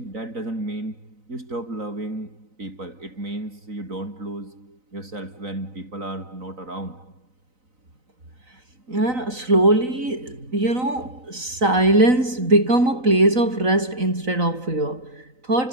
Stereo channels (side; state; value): left; late; 3.9 ms